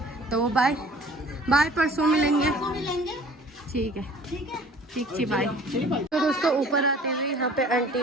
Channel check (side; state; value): both; normal; correlation 0.49